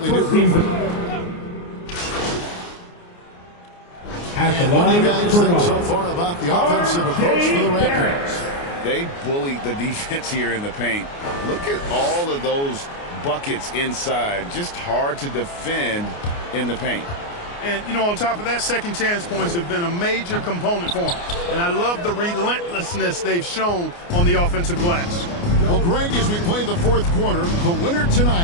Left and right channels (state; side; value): late; right; 29 ms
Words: new group. And what do you guys think so far about the offensive approach for the Raptors? They bullied the defense here in the paint. Look at all of those buckets inside. Just hard to defend in the paint. And, you know, on top of that, second chance points have been a major component for them. And I love the relentlessness they've shown on the offensive glass. Well, Greg, as we play the fourth quarter, the winner